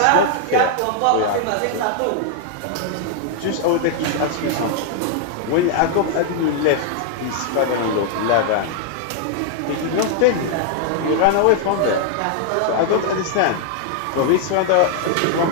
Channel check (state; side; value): different; both; correlation 0.00